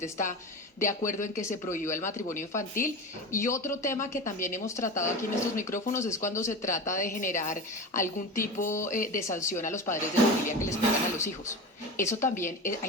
está de acuerdo en que se prohíba el matrimonio infantil. Y otro tema que también hemos tratado aquí en estos micrófonos es cuando se trata de generar algún tipo de sanción a los padres de familia que les pegan a los hijos. Eso también,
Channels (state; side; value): normal; both; correlation 0.27